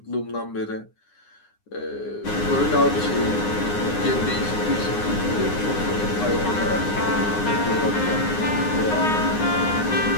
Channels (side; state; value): right; late; 9.7 ms